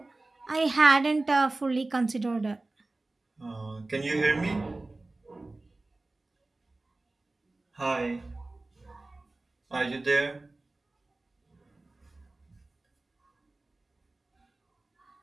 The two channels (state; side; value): quieter; left; 3.0 dB